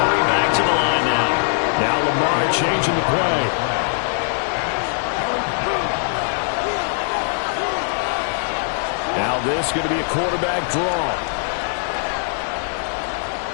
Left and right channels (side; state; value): right; silent; digital silence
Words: hurry back to the line now. Now Lamar changing the play. Now this is going to be a quarterback draw.